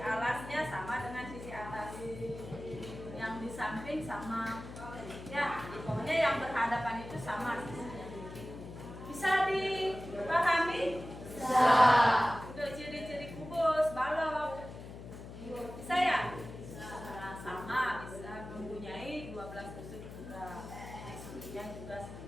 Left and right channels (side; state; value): left; noise; hum, 12 dB below the sound